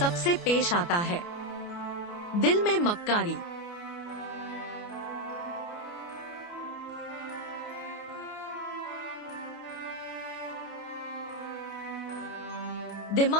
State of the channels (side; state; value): right; late; 29 ms